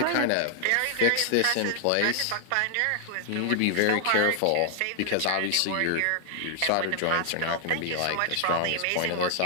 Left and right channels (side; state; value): both; different; correlation 0.00